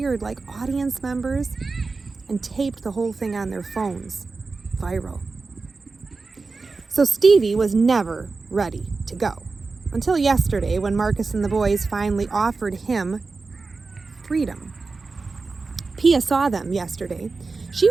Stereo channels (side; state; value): left; quieter; 4.1 dB